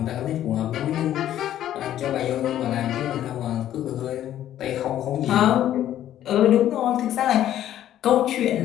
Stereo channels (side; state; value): right; quieter; 11.9 dB